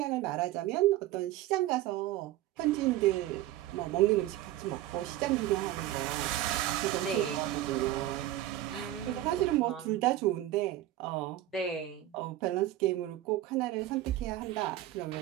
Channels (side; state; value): left; quieter; 14.1 dB